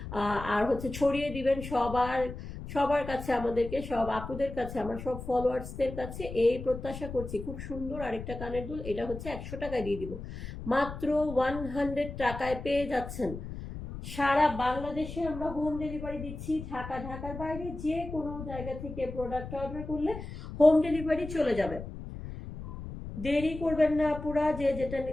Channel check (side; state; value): left; noise; rumble, 10 dB below the sound